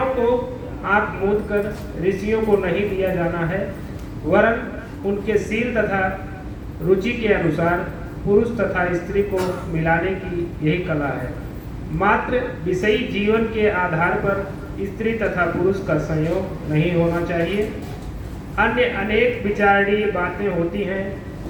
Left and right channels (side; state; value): both; identical; correlation 1.00